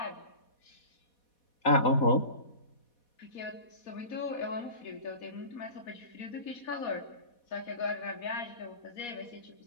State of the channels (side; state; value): right; late; 4.2 ms